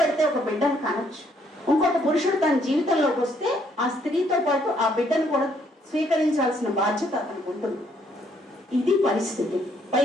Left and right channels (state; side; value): normal; both; correlation 0.69